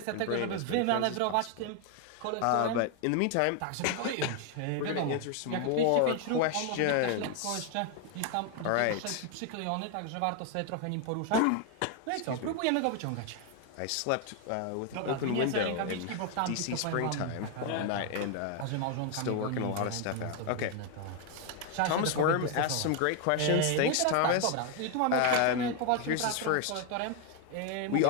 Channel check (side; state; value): both; different; correlation 0.01